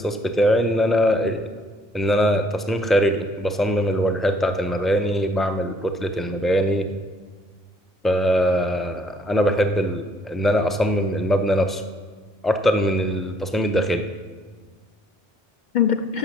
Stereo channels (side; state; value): both; normal; correlation 0.64